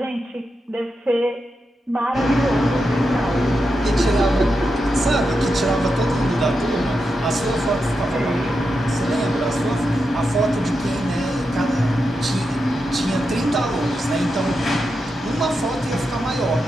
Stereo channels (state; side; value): normal; both; correlation 0.87